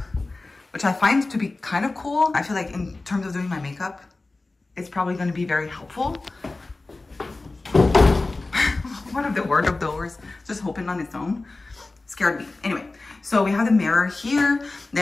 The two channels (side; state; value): right; quieter; 3.3 dB